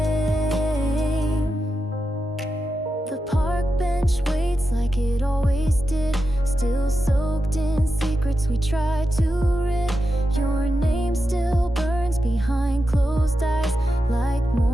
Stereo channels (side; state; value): both; normal; correlation 0.89